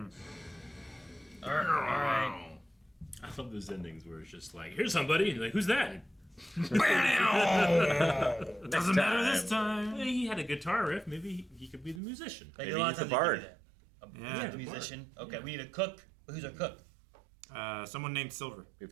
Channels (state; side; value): drops out; left; at 12.0 s